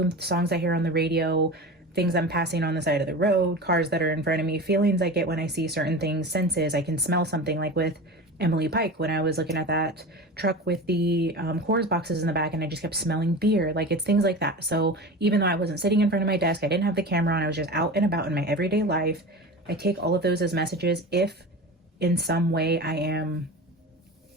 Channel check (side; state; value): both; normal; correlation 0.31